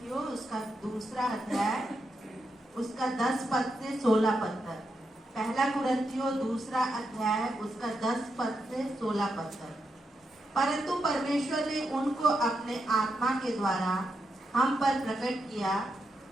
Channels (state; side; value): normal; both; correlation 0.84